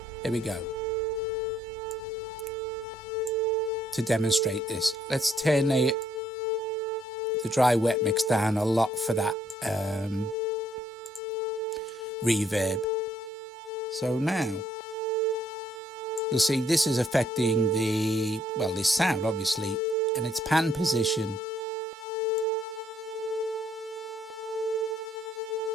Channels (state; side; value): normal; both; correlation 0.68